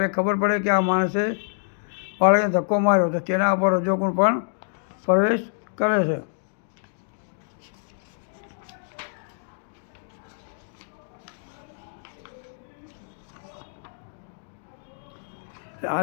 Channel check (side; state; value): right; silent; digital silence